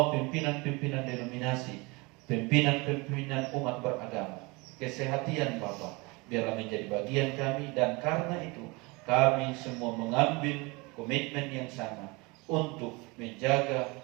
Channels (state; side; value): quieter; left; 25.9 dB